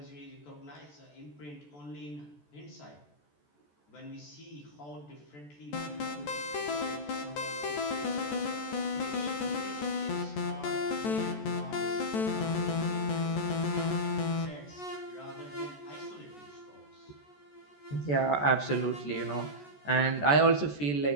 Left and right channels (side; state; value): right; late; 14 ms